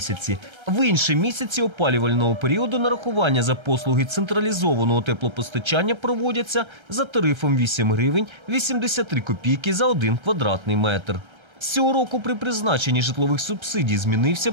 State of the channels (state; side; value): late; left; 1.3 ms